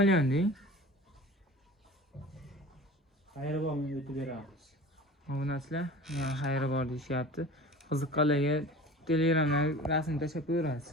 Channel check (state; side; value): normal; both; correlation 0.39